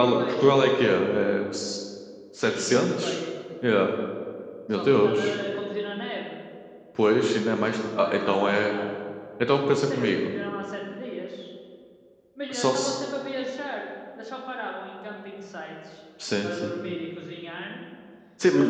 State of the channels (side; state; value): both; identical; correlation 1.00